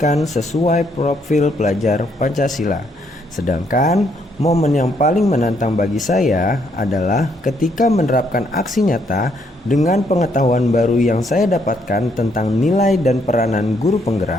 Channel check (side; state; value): both; normal; correlation 0.72